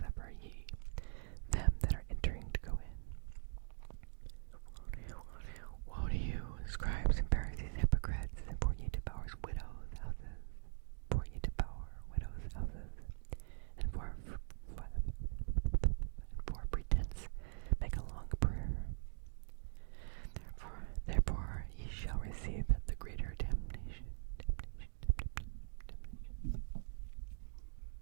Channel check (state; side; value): silent; left; digital silence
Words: ye them that are entering to go in. Woe to you, scribes and Pharisees, hypocrites, for ye devour widows' houses. For ye devour widows' houses, and for pretense make a long prayer. Therefore ye shall receive the greater damnation.